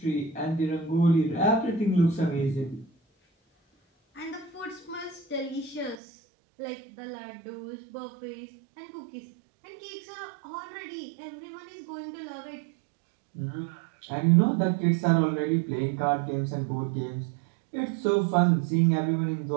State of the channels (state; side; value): drops out; left; at 6.0 s